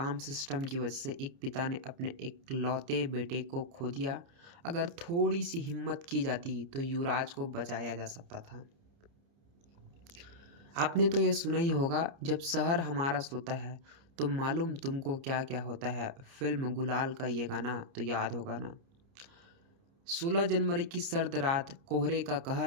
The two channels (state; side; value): late; left; 29 ms